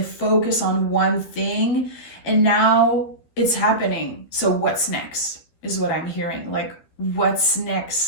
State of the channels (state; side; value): late; right; 13 ms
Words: focused on one thing and now it's happening. So what's next is what I'm hearing. Like, what's